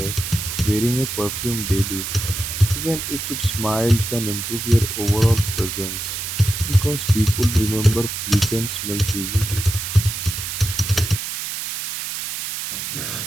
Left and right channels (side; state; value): right; noise; hiss, 5 dB below the sound